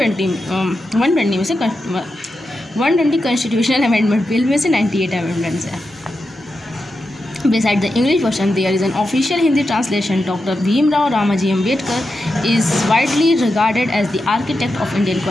में से 120 कॉन्स्टिट्यूशनल अमेंडमेंट बिल में से 98 अमेंडमेंट्स हैं. Beside the English version, there is an official Hindi translation. Dr. Bhimrao Ramaji Ambedkar is widely regarded as the architect of Indian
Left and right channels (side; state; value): both; normal; correlation 0.88